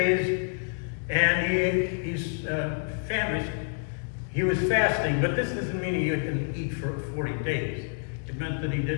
and he's famished. He was fasting, but this doesn't mean he couldn't eat for 40 days. It meant that he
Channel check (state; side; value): silent; right; 59 dB below the other